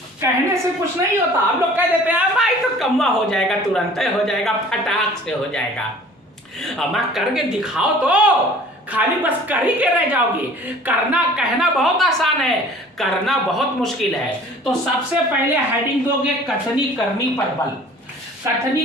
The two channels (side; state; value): both; normal; correlation 0.48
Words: कहने से कुछ नहीं होता। हम लोग कह देते हैं भाई तो कम्मा हो जाएगा, तुरंत हो जाएगा, फटाक से हो जाएगा। अमा करके दिखाओ तो, खाली बस कर ही के रह जाओगे। करना कहना बहुत आसान है, करना बहुत मुश्किल है। तो सबसे पहले हेडिंग दोगे कथनी करनी पर बल। कथनी